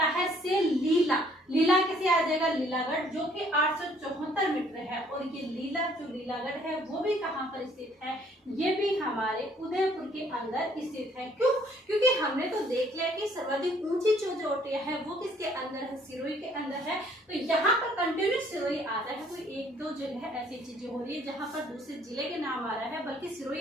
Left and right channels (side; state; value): both; normal; correlation 0.62